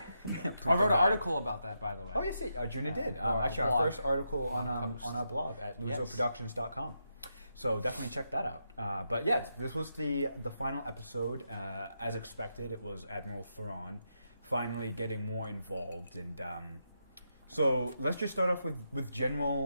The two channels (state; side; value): inverted; both; correlation -0.83